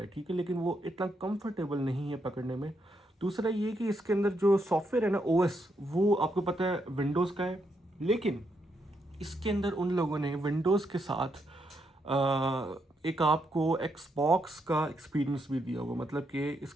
ठीक है, लेकिन वो इतना कंफर्टेबल नहीं है पकड़ने में। दूसरा ये कि इसके अंदर जो सॉफ्टवेयर है ना, OS, वो आपको पता है विंडोज़ का है, लेकिन इसके अंदर उन लोगों ने विंडोज़ के साथ एक आपको एक्सबॉक्स का एक्सपीरियंस भी दिया हुआ। मतलब कि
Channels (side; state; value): both; normal; correlation 0.79